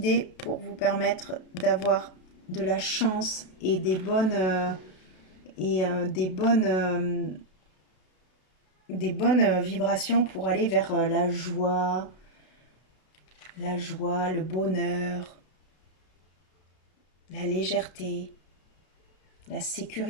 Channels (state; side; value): late; right; 32 ms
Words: pour vous permettre d'avoir de la chance et des bonnes vibrations pour aller vers la joie, le bonheur, la légèreté, la